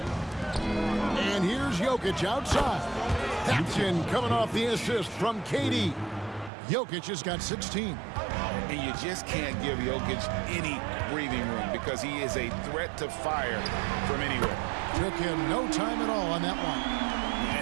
And here's Jokic outside. That's in coming off the assist from KD. Jokic has got 16. And you just can't give Jokic any breathing room because he is a threat to fire from anywhere. Took him no time at all on that one.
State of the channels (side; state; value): left; drops out; at 6.5 s